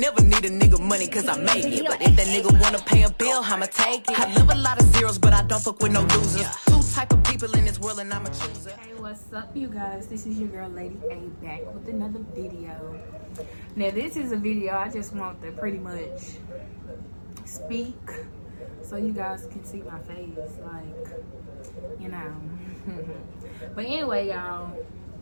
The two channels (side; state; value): both; inverted; correlation -1.00